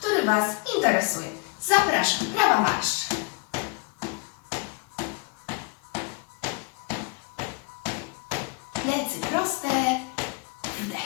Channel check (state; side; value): quieter; right; 30.0 dB